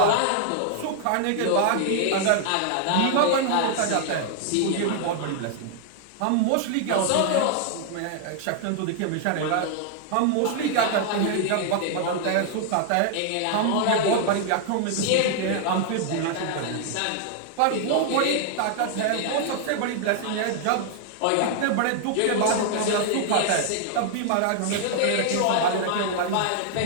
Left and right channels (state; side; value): different; both; correlation 0.00